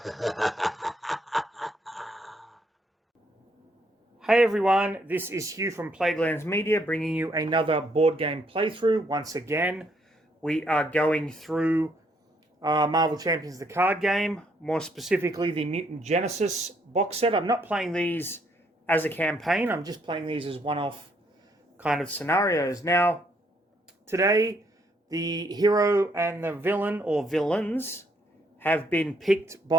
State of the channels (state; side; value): normal; both; correlation 0.70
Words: Hey everyone, this is Hugh from Plaguelands Media bringing you another board game playthrough. Once again, we are going through Marvel Champions the card game, more specifically the Mutant Genesis box set. I'm not playing these as a campaign, I'm just playing these as one-off kind of scenarios. Now, today, the hero and the villain, or villains, have been picked